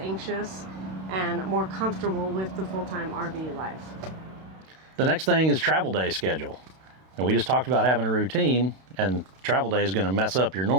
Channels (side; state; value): left; late; 32 ms